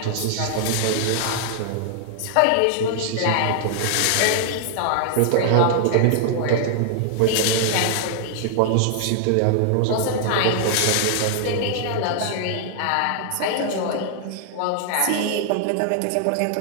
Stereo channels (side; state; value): both; different; correlation 0.00